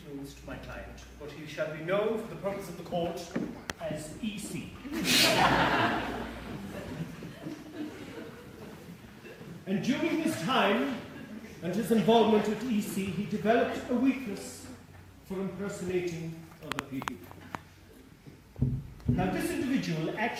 my client, but he shall be known for the purpose of the court as EC. And during his time and his involvement with EC, he developed a weakness for impersonating other people. Now, this individual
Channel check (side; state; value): both; identical; correlation 1.00